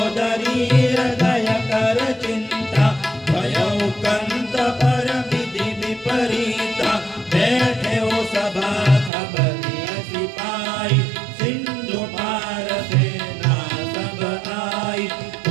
हृदय कर चिंता भयउ कंत पर विधि विपरीता बैठे हो सभा खबरिया सिपाही सिंधु पार सेना सब आई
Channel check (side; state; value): left; drops out; at 9.1 s